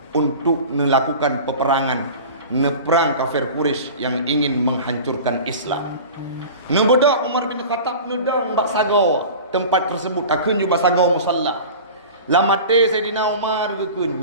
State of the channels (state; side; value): inverted; both; correlation -0.37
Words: untuk melakukan peperangan neperang kafir Quraisy yang ingin menghancurkan Islam. Nebedak Umar bin Khattab nedang bak sago tempat tersebut akun juga sago musalla. Lamate Sayyidina Umar gekun